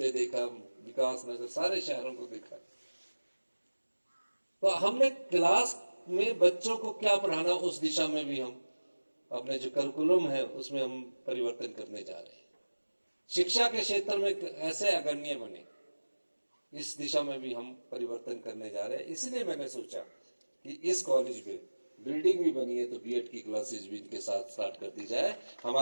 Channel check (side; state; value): both; inverted; correlation -1.00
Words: देखा, विकास नगर सारे शहरों को देखा। तो हमने क्लास में बच्चों को क्या पढ़ाना, उस दिशा में भी हम अपने जो करिकुलम है उसमें हम परिवर्तन करने जा रहे हैं। शिक्षा के क्षेत्र में ऐसे अग्रणी बने, इस दिशा में भी हम परिवर्तन करने जा रहे हैं। इसलिए मैंने सोचा कि इस कॉलेज में बिल्डिंग भी बनी है तो बीएड की क्लासेस भी इनके साथ स्टार्ट कर दी जाए,